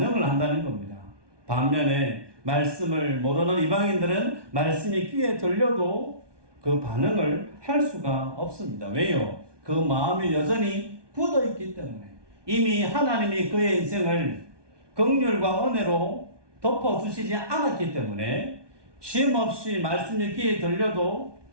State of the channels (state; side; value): late; left; 1.2 ms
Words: 한다는 겁니다. 반면에 말씀을 모르는 이방인들은 말씀이 귀에 들려도 그 반응을 할 수가 없습니다. 왜요? 그 마음이 여전히 굳어 있기 때문에 이미 하나님이 그의 인생을 긍휼과 은혜로 덮어주시지 않았기 때문에 쉼없이 말씀이 귀에 들려도